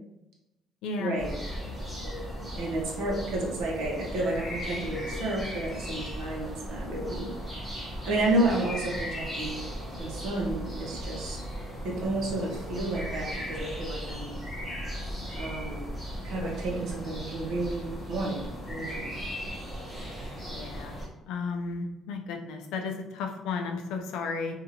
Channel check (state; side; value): normal; both; correlation 0.56